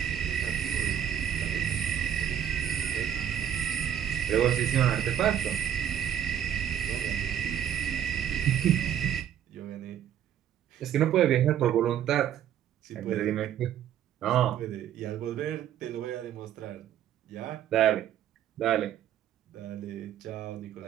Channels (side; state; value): left; quieter; 10.0 dB